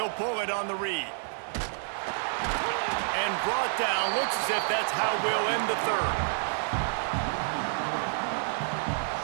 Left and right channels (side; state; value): left; silent; digital silence